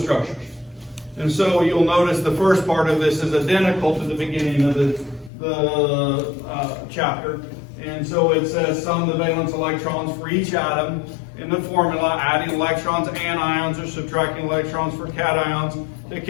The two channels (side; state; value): right; drops out; at 5.3 s